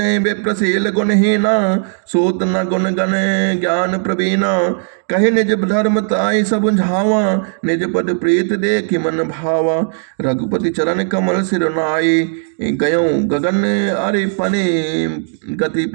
विप्रशील गुणहीना, सूत न गुण गण ज्ञान प्रवीणा। कहे निज धर्म ताई सब झावा, निज पद प्रीत देखि मन भावा। रघुपति चरण कमल सिर नाई, गयो गगन अरिपनि गति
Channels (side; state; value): left; silent; digital silence